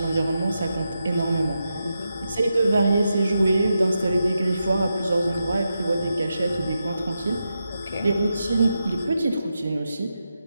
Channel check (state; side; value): inverted; both; correlation -0.87